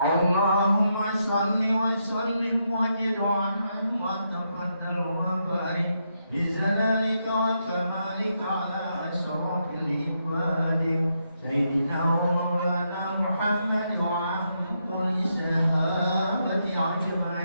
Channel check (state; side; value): inverted; both; correlation -0.80